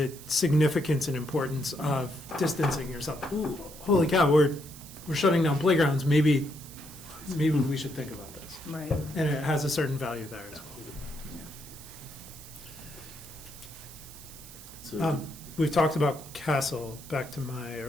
significance and importance of distancing yourself. Ooh, holy cow, we're shutting down playgrounds. Maybe we should think about this. Right. And it has a certain value there as So, well. We've talked about Castle. Back to my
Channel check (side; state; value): right; noise; hiss, 17 dB below the sound